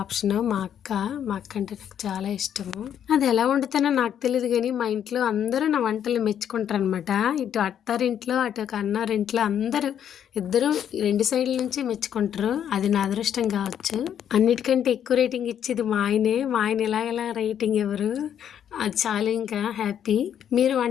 మా అక్క అంటే నాకు చాలా ఇష్టము. అది ఎలా వండుతానో నాకు తెలియదు, కానీ మా ఇంట్లో అందరూ నా వంటలు మెచ్చుకుంటారు అనమాట. ఇటు అత్తారింట్లో అటు ఒక అన్నారింట్లో అందరూ, ఇద్దరు 2 సైడ్ల నుంచి మెచ్చుకుంటారు. అది నా అదృష్టం కావచ్చు. అన్నిటికంటే ఎక్కువ రేటింగ్ ఇచ్చేది మా ఆయన ఎలా రేటింగ్ ఎవరు, అది చాలా ఇంకా హ్యాపీ. మీరు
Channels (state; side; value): quieter; right; 9.4 dB